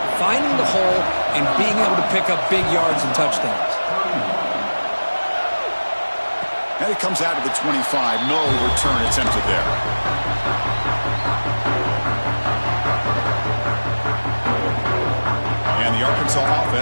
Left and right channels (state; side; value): inverted; both; correlation -1.00